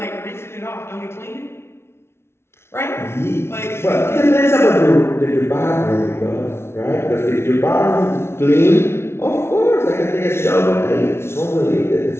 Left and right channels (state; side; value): late; right; 0.12 ms